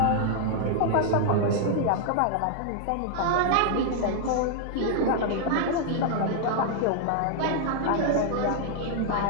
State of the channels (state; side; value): different; both; correlation 0.00